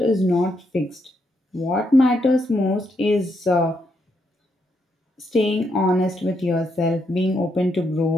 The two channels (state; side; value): normal; both; correlation 0.79